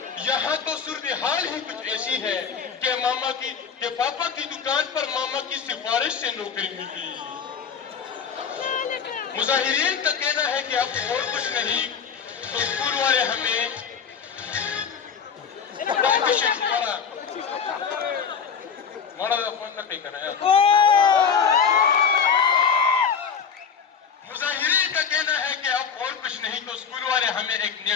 यहाँ तो सूरत हाल ही कुछ ऐसी है कि पापा की दुकान पर मामा की सिफारिश से नौकरी मिली। मुजाहिरीन का कहना है कि अब और कुछ नहीं तो स्कूल वाले हमें मुजाहिरीन का कहना है कि अब और कुछ नहीं तो स्कूल वाले हमें एक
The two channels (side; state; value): right; quieter; 6.7 dB